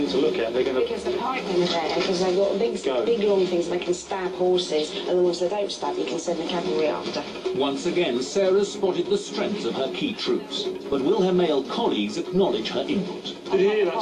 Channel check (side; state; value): both; identical; correlation 1.00